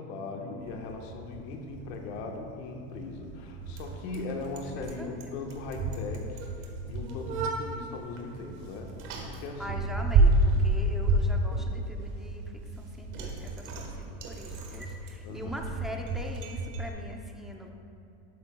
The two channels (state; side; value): normal; both; correlation 0.22